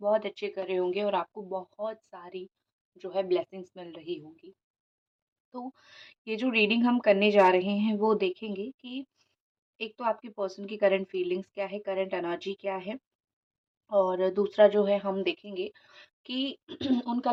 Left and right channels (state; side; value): identical; both; correlation 1.00